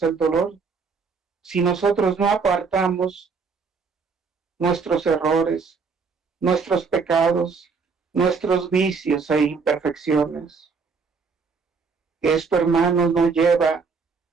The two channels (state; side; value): quieter; left; 5.0 dB